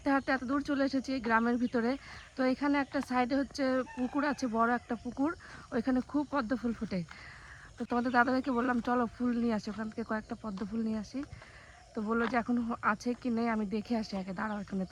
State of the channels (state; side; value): identical; both; correlation 1.00